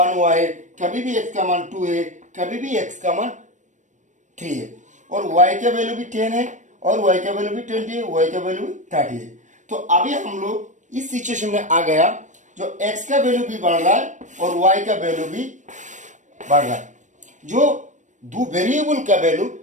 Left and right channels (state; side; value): late; left; 0.35 ms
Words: हुआ है, कभी भी एक्स का मान 2 है, कभी भी एक्स का मान 3 है, और वाई का वैल्यू भी 10 है और वाई का वैल्यू भी 20 है, वाई का वैल्यू भी 30 है। तो अभी हम लोग इस सिचुएशन में आ गया, जो एक्स का वैल्यू भी बढ़ रहा है और वाई का वैल्यू भी बढ़ रहा है। जो दो वेरिएबल का वैल्यू